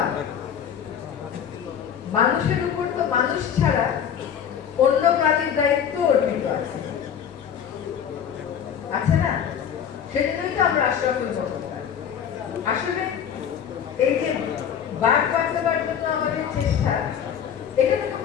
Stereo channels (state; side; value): quieter; right; 8.4 dB